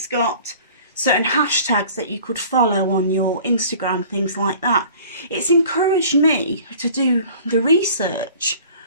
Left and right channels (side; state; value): both; inverted; correlation -0.47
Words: got certain hashtags that you could follow on your Instagram, things like that. It's encouraged me to do the research.